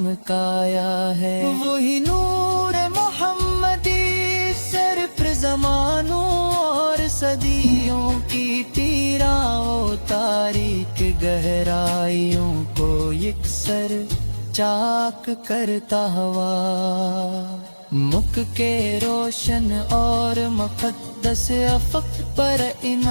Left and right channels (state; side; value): inverted; both; correlation -1.00